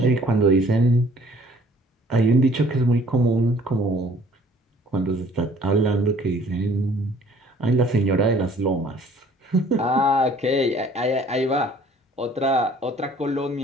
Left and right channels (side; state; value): both; normal; correlation 0.56